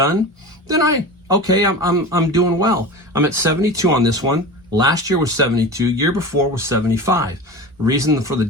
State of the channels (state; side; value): normal; both; correlation 0.31